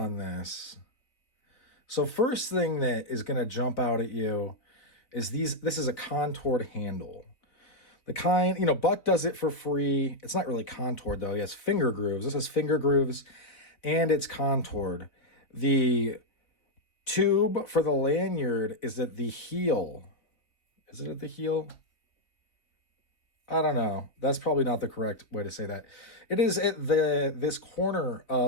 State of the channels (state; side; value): late; right; 3.3 ms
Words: this. So first thing that is going to jump out at you is this is a contoured handle. The kind, Buck does it for free. It's not really contoured though. He has finger grooves. This has finger grooves and it's contoured. The tube for the lanyard is at the heel. Is it at the heel? I don't know. That's probably not the correct way to say that. It is at this corner